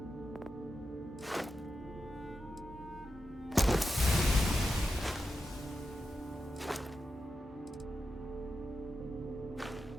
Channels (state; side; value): normal; both; correlation 0.90